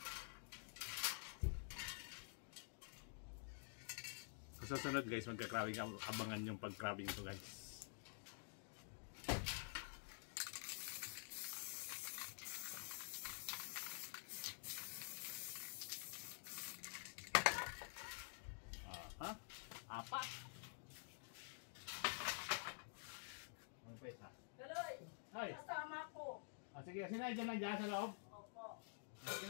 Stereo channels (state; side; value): silent; right; digital silence